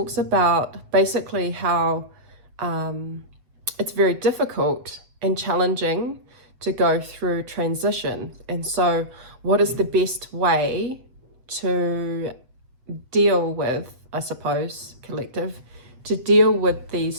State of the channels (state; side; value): late; left; 7.8 ms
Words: about basically how it's very difficult and challenging to go through transition. And so what is the best way to deal with, I suppose, collective, to deal with